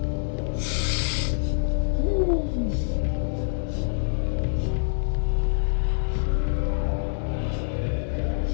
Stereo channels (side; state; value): right; silent; digital silence